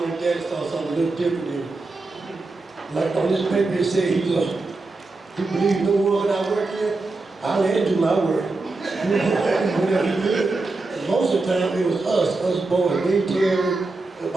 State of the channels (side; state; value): left; quieter; 3.4 dB